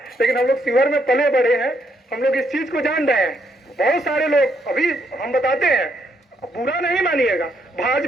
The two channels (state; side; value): normal; both; correlation 0.74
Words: लेकिन हम लोग शिवहर में पले बड़े हैं, हम लोग इस चीज को जान रहे हैं। बहुत सारे लोग अभी हम बताते हैं, बुरा नहीं मानिएगा,